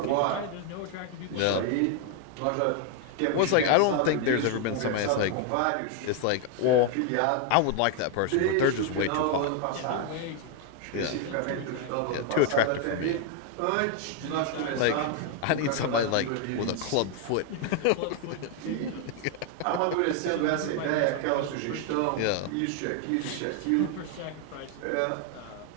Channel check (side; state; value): both; different; correlation 0.01